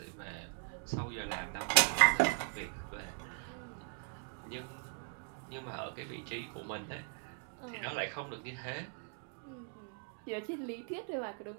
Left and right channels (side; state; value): left; silent; 52 dB below the other